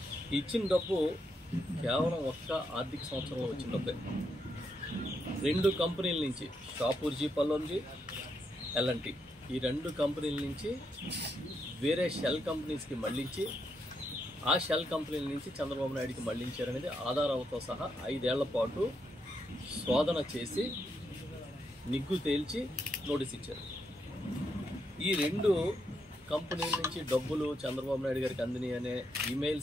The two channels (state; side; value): normal; both; correlation 0.80